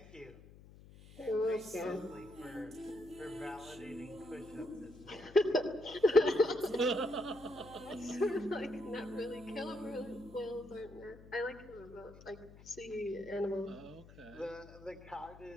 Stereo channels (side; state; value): left; noise; hum, 19 dB below the sound